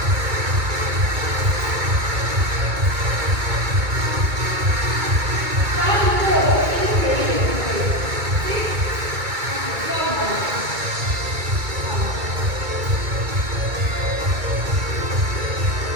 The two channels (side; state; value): left; late; 2.2 ms